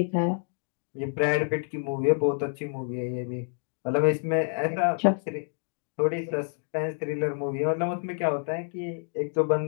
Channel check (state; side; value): silent; right; digital silence